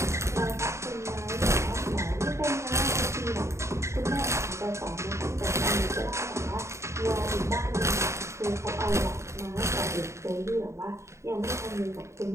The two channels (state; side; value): late; left; 0.14 ms